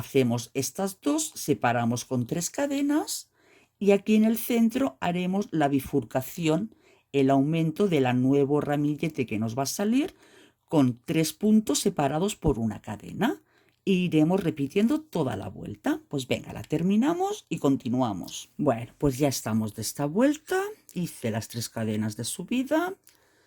estas dos, separamos con 3 cadenas y aquí en el centro haremos la bifurcación, el aumento del nuevo ramillete que nos va a salir con 3 puntos separados por una cadena. E iremos repitiendo toda la vuelta. Pues venga, la terminamos y continuamos. Bueno, pues ya estamos de esta vuelta. Hice las 3 cadenas de subida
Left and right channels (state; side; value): identical; both; correlation 1.00